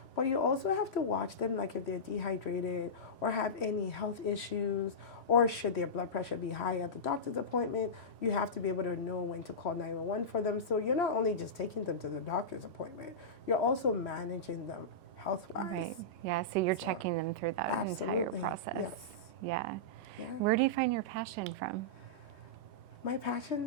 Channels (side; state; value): left; late; 1.2 ms